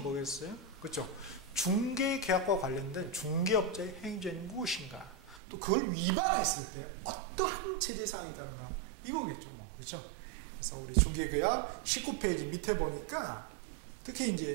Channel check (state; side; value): drops out; left; at 5.4 s